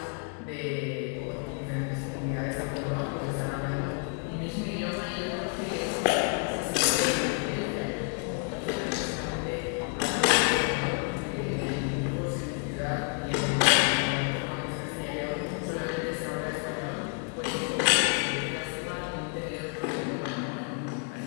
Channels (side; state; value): right; quieter; 37.4 dB